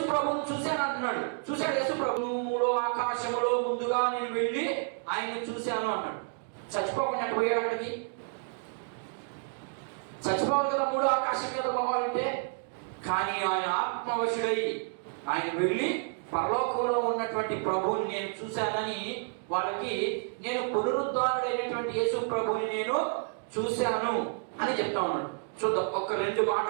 ప్రభువుని చూశాను అంటున్నాడు. చూశాడు యేసు ప్రభువులో ఆకాశములో ముందుగా నేను వెళ్ళి ఆయన్ని చూశాను అన్నాడు. చచ్చిపోకుండా పోయాడు అక్కడికి. చచ్చిపోవాలి కదా మూడో ఆకాశం మీద పోవాలంటే. కానీ ఆయన ఆత్మవశుడై ఆయన వెళ్ళి పరలోకంలో ఉన్నటువంటి ప్రభువుని నేను చూశానని వాళ్ళకి, నేను పునరుద్ధారుడైనటువంటి యేసు ప్రభువుని నేను చూశాను అని చెప్తా ఉన్నాడు. చూద్దాం, ఒక 2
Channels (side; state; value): left; silent; 58 dB below the other